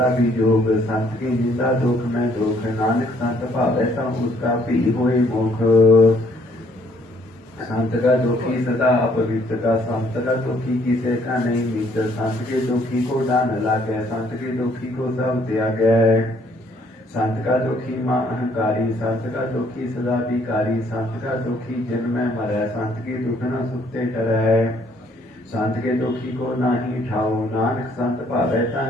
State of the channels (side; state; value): both; normal; correlation 0.65